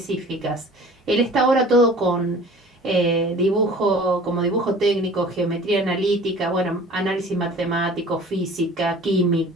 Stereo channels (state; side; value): normal; both; correlation 0.46